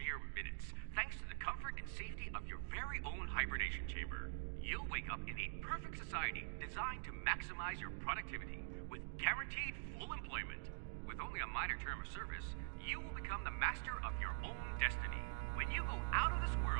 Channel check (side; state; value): left; silent; digital silence